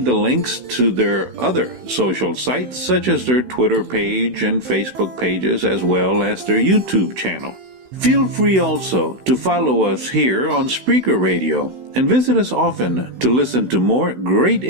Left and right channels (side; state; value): left; late; 16 ms